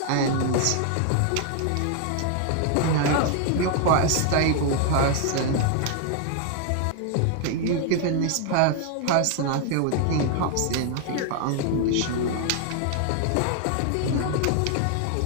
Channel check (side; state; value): both; different; correlation 0.00